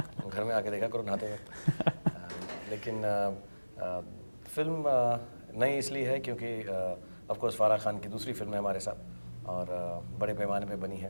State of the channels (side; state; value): both; inverted; correlation -1.00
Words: घर में आके देखा करो नहाते वक्त। लेकिन फिल्म नई इसलिए है क्योंकि ऑफ कोर्स फारा खान की दूसरी फिल्म है हमारे साथ और बड़े पैमाने पे बनी